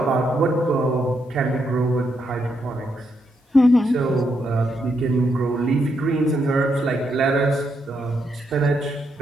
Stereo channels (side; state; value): both; normal; correlation 0.79